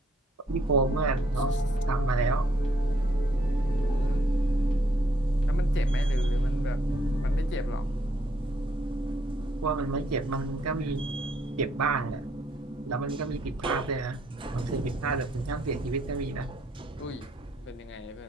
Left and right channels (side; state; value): both; normal; correlation 0.69